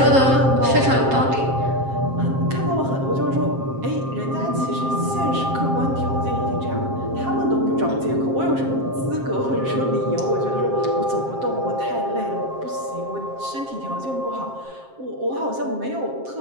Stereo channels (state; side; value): late; left; 7.5 ms